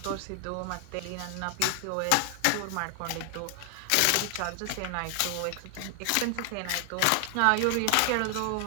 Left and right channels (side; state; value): both; different; correlation 0.00